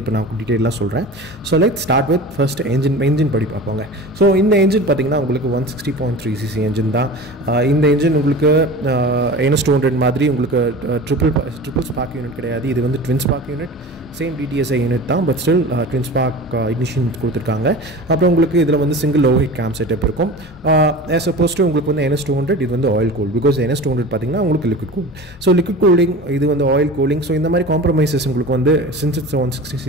இப்போ நான் டீட்டெயிலாக சொல்கிறேன். So let's start with first engine படி பார்ப்போங்க. ஸோ இந்த என்ஜின் பார்த்தீங்கன்னா உங்களுக்கு 160.3cc என்ஜின் தான். இந்த என்ஜின் உங்களுக்கு NS 200 மாதிரி உங்களுக்கு ட்ரிபிள் ஸ்பார்க் யூனிட் கிடையாது. இது வந்து twin spark unit, same DTSI unit தான், but still twin spark ignition கொடுத்துருக்காங்க. அப்புறம் உங்களுக்கு இதில் வந்து single overhead cam setup இருக்கும். ஆஸ் அப்போஸ் டு உங்களுக்கு வந்து NS 200 இது வந்து ஆயில் கூல். பிகாஸ் NS 200 பார்த்தீங்கன்னா உங்களுக்கு liquid cool. So liquid cooling, இது வந்து ஆயில் கூலிங். ஸோ இந்த மாதிரி காம்ப்ரமைசஸ் உங்களுக்கு வந்து since it's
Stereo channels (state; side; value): normal; both; correlation 0.35